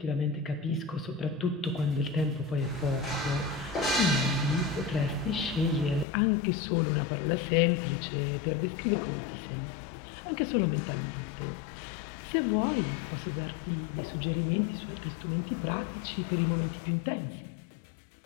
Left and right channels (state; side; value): drops out; right; at 6.1 s